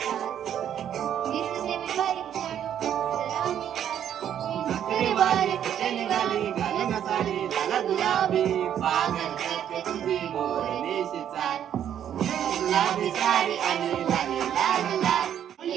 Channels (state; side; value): quieter; left; 9.8 dB